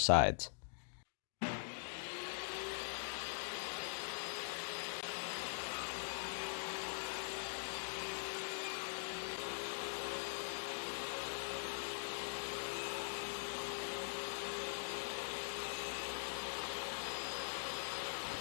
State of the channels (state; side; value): silent; right; digital silence